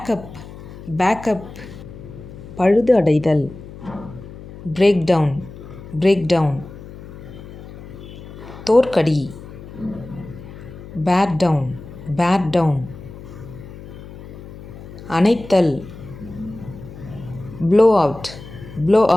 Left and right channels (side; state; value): left; noise; hum, 15 dB below the sound